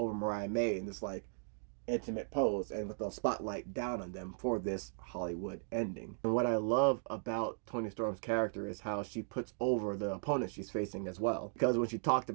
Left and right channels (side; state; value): left; silent; digital silence